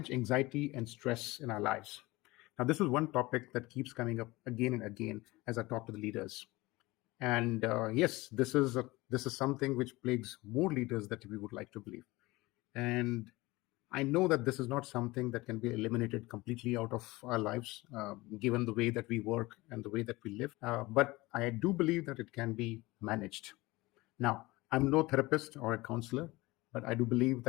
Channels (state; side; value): quieter; right; 21.0 dB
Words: anxiety and stress in our lives? Now, this is one topic that keeps coming up again and again as I talk to the leaders. And yes, this is something which plagues more leaders that we would like to believe. And I know that this is not something that can be eliminated completely out of our lives, given the way that we work and the way that we live. But I do believe that it can be managed. Now, I'm no therapist or a counselor, but I do believe